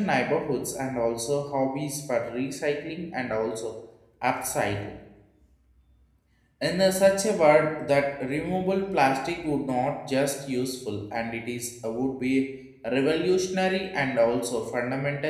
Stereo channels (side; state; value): both; identical; correlation 1.00